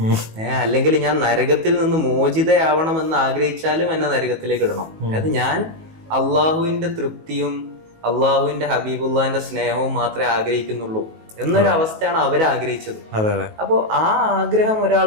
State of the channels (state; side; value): late; left; 19 ms